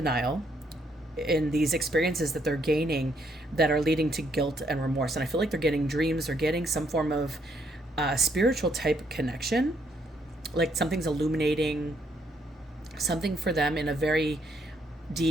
in these experiences that they're gaining that are leading to guilt and remorse. And I feel like they're getting dreams or getting some form of spiritual type connection, like something's illuminating something for them in a very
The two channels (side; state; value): both; normal; correlation 0.72